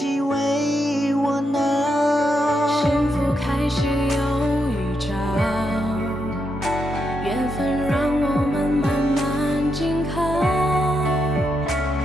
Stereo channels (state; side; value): normal; both; correlation 0.81